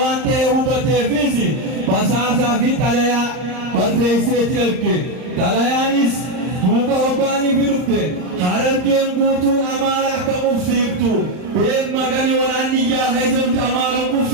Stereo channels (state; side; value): late; left; 39 ms